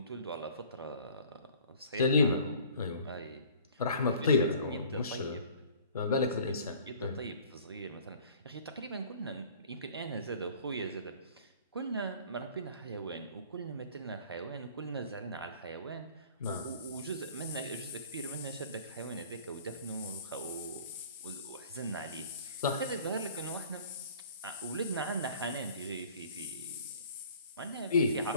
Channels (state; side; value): inverted; both; correlation -0.50